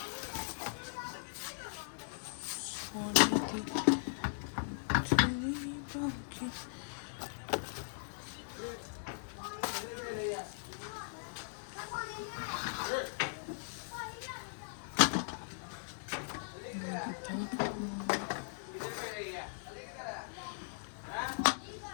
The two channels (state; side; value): silent; right; digital silence